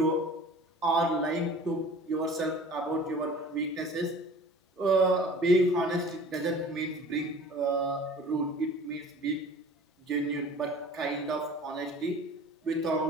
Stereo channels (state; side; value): normal; both; correlation 0.44